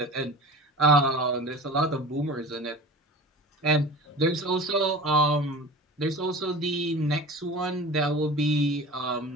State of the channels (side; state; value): both; normal; correlation 0.37